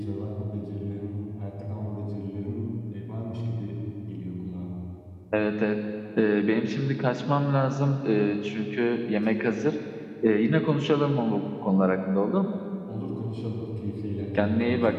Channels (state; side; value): identical; both; correlation 1.00